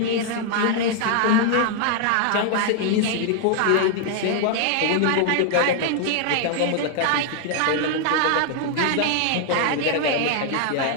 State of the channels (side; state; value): both; different; correlation 0.00